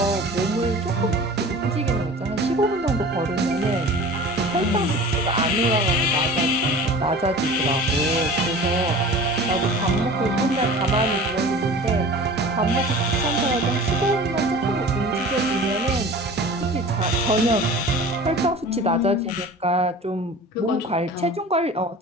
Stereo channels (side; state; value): both; normal; correlation 0.40